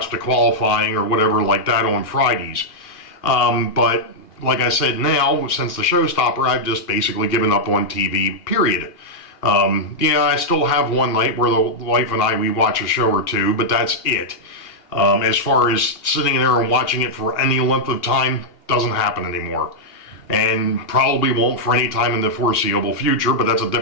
the qualifying or whatever like that on Fridays. But like I said, now, since the showstopper, I've just basically given up on TV, period. I still have one night where the wife and we watch a show or two, but that's it. As far as sitting there and watching it for any length of time, doesn't happen anymore. And probably won't for any time in the foreseeable future, but that's a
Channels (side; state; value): right; late; 2.5 ms